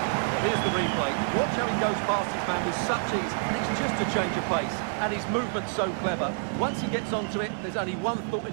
Here's the replay. Watch how he goes past his man with such ease. It's just a change of pace. And his movement's so clever. Once he gets onto it, there's only one thought in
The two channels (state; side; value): silent; left; 60 dB below the other